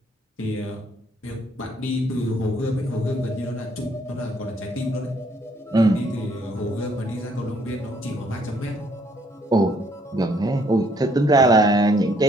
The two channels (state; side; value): normal; both; correlation 0.66